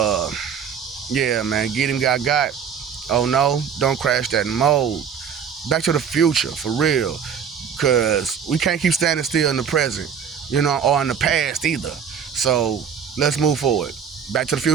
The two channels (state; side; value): quieter; left; 7.4 dB